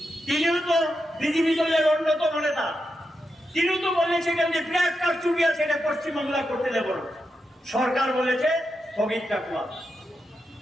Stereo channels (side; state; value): both; normal; correlation 0.86